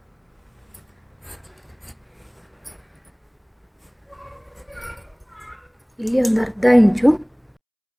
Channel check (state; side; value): identical; both; correlation 1.00